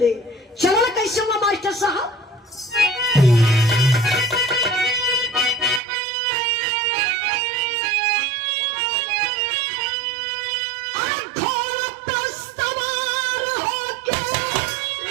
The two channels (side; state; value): left; drops out; at 5.8 s